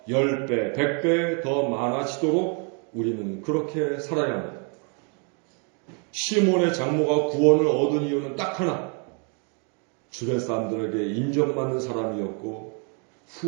10배, 100배 더 많아지도록 우리는 그렇게 살아야 합니다. 시몬의 장모가 구원을 얻은 이유는 딱 하나, 주변 사람들에게 인정받는 사람이었고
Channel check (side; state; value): left; quieter; 38.2 dB